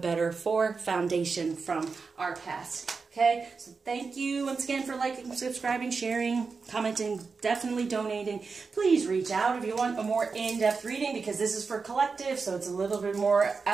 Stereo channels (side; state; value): left; quieter; 4.8 dB